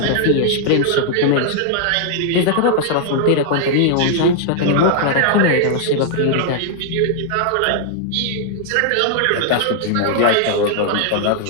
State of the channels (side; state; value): both; different; correlation -0.01